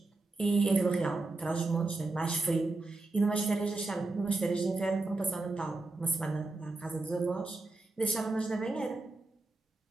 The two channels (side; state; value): left; quieter; 3.2 dB